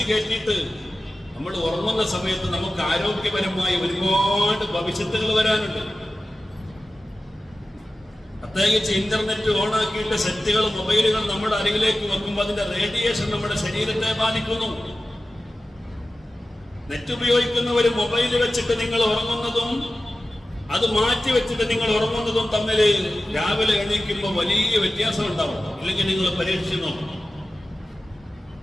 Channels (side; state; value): both; normal; correlation 0.95